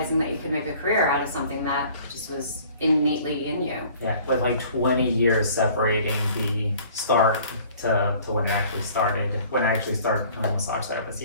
that you could make a career out of something that just was innately in you. Yeah, with like 20 years separating the start to when it actually started, when I actually started becoming a massage therapist,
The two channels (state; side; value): inverted; both; correlation -0.52